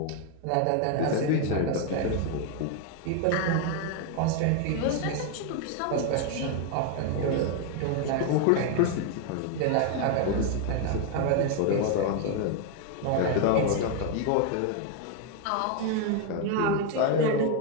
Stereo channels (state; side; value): different; both; correlation 0.01